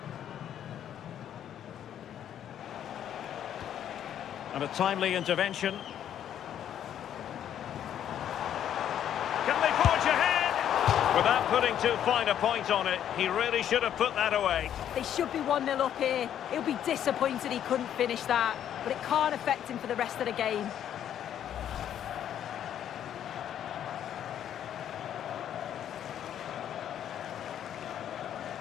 And a timely intervention. Can they forge ahead? Without putting too fine a point on it, he really should have put that away. They should be 1-0 up here. He'll be disappointed he couldn't finish that, but it can't affect him for the rest of the game.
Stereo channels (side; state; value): right; quieter; 10.1 dB